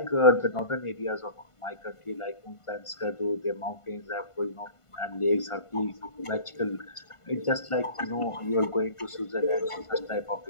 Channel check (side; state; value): right; late; 1.5 ms